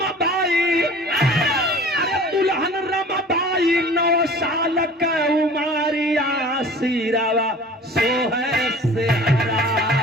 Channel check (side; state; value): both; normal; correlation 0.44